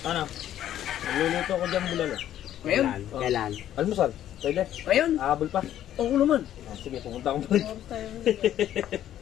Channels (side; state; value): right; quieter; 11.6 dB